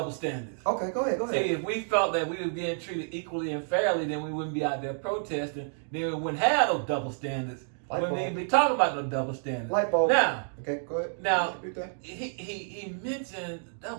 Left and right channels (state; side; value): silent; left; digital silence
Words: standards. Okay, go ahead. See, if we felt that we were being treated equally and fairly, then we wouldn't be out there protesting. Then we wouldn't have those double standards. We wouldn't even be talking about those double standards. Light bulb. Now, okay, go ahead. Now, he mentioned